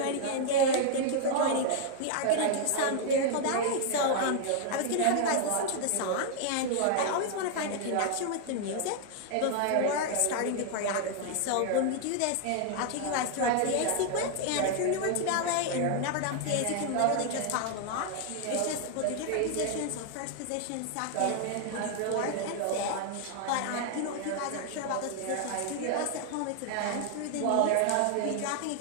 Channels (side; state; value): both; different; correlation 0.00